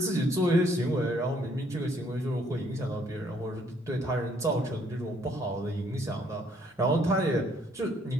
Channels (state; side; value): normal; both; correlation 0.66